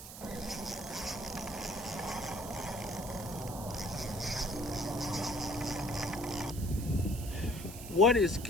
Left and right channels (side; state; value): right; noise; hiss, 12 dB below the sound